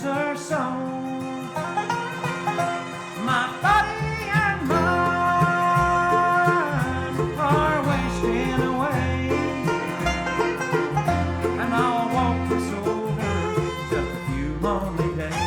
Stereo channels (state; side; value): identical; both; correlation 1.00